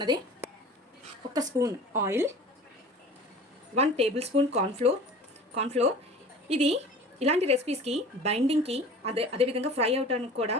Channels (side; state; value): both; normal; correlation 0.41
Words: 1 spoon oil, 1 table spoon cornflour. ఇది ఇలాంటి రెసిపీస్కి బైండింగ్కి అదేవిధంగా ఫ్రై అవడానికి కూడా